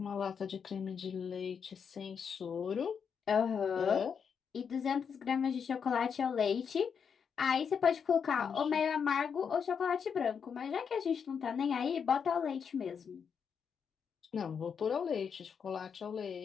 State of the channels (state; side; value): quieter; right; 6.8 dB